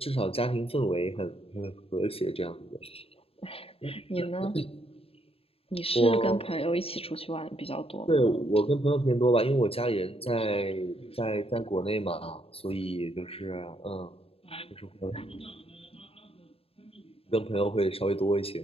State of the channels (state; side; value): late; right; 0.28 ms